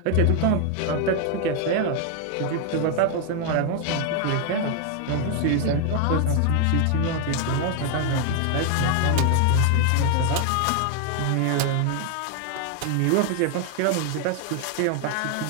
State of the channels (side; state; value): both; different; correlation 0.00